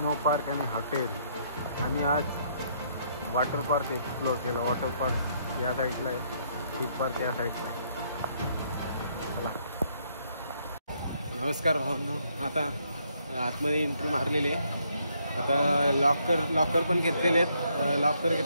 park आणि हॉटेल. आणि आज वॉटर पार्क एक्सप्लोर केलं. वॉटर पार्क या साईडला आहे, थीम पार्क या साईडला आहे. चला, नमस्कार भावांनो. आता आतमध्ये एंट्री मारलेली आहे. आता लॉकर पण घेतलेले आहेत. लॉकर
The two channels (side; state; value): both; inverted; correlation -0.71